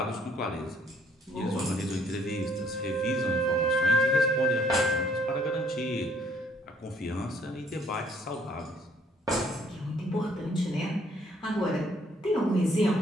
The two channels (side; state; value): both; normal; correlation 0.64